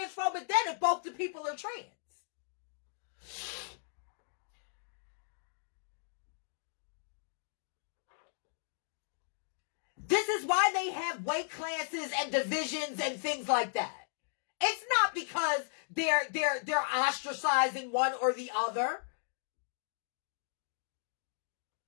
then if both the people are trans? This is why they have weight classes and divisions and things like that. It's not because they're ostracizing one or the other.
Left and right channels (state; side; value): silent; right; digital silence